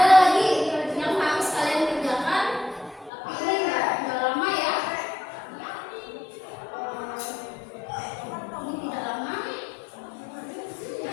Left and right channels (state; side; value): drops out; right; at 3.1 s